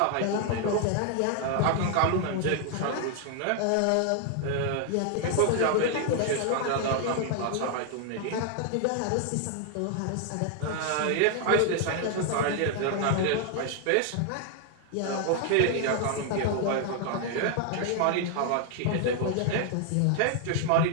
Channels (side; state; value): both; different; correlation 0.00